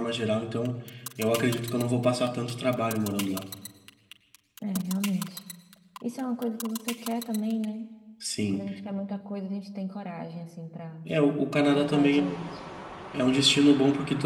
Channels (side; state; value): both; identical; correlation 1.00